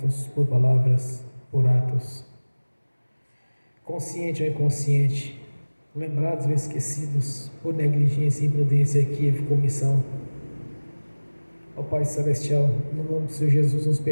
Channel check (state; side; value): inverted; both; correlation -1.00